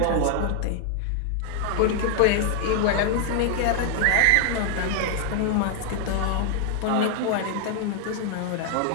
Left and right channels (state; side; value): different; both; correlation 0.00